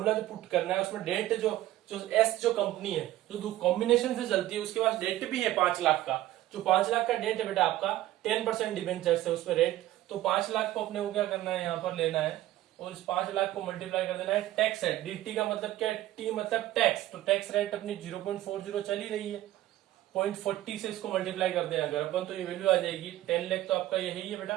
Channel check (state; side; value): quieter; left; 14.7 dB